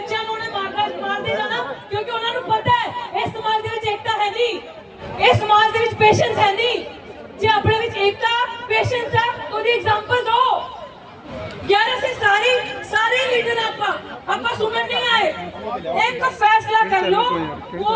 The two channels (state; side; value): identical; both; correlation 1.00